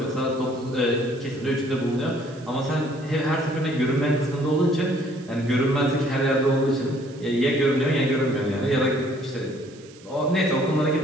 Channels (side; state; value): right; noise; hiss, 24 dB below the sound